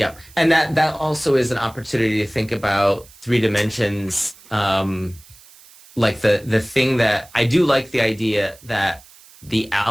and that also is an opportunity to think about three dimensions. Like the thing that I do like the idea that the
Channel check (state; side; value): noise; right; hiss, 24 dB below the sound